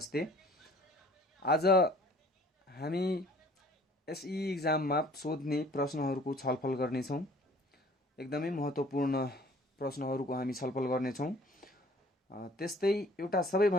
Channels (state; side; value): normal; both; correlation 0.53